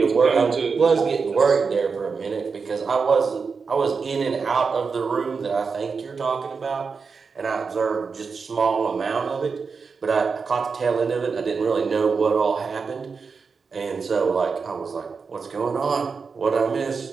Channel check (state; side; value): quieter; left; 5.2 dB